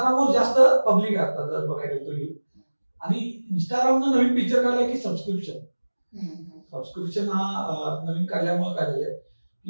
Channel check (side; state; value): both; inverted; correlation -1.00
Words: जास्त पब्लिक आहे आता जर बघायला गेलं तर युथ. आणि इंस्टाग्रामनं नवीन फीचर काढलंय की सबस्क्रिप्शन हा नवीन काढल्यामुळे काय झालंय